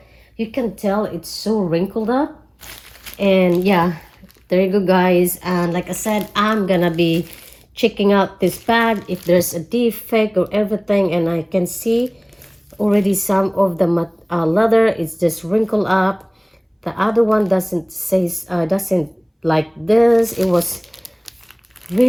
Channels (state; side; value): identical; both; correlation 1.00